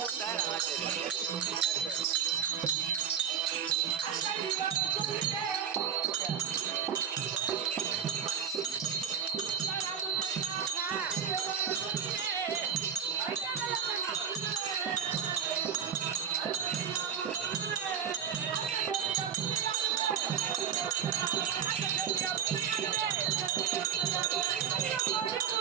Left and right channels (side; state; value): left; quieter; 8.0 dB